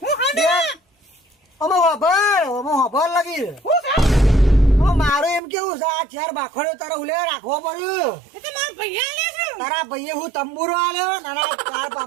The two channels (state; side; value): drops out; left; at 5.4 s